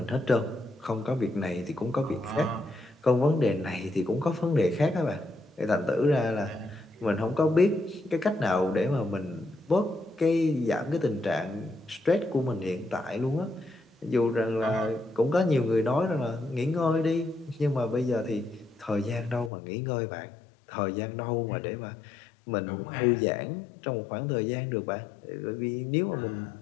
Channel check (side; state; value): right; drops out; at 19.5 s